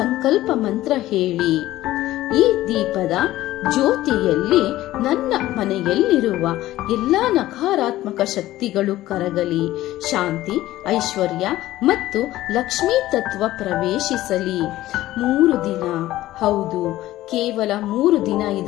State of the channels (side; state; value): right; quieter; 15.5 dB